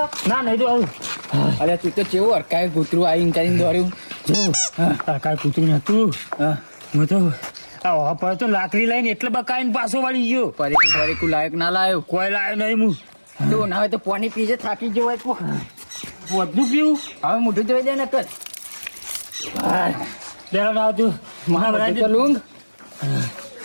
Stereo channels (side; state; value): both; inverted; correlation -1.00